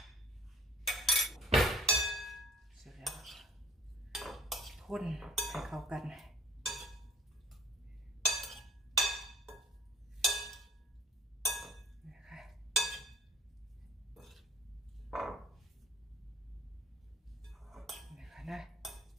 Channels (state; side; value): normal; both; correlation 0.50